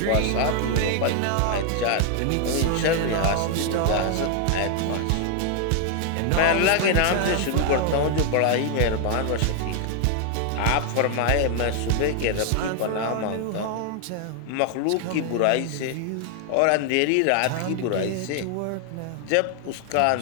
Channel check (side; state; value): both; different; correlation 0.00